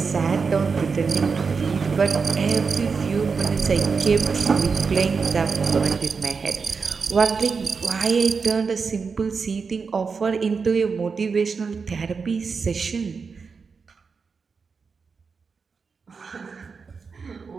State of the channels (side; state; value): left; quieter; 5.2 dB